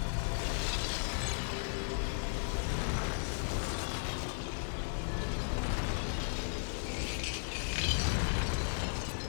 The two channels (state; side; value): silent; right; 54 dB below the other